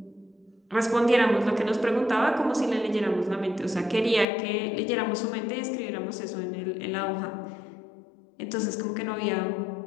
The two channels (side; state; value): right; drops out; at 4.2 s